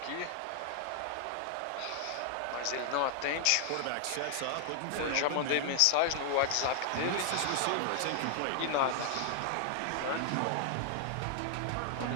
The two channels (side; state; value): both; different; correlation 0.00